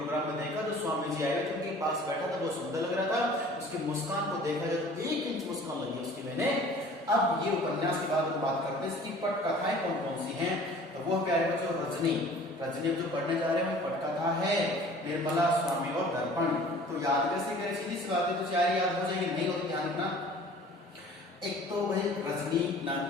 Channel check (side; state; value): both; normal; correlation 0.48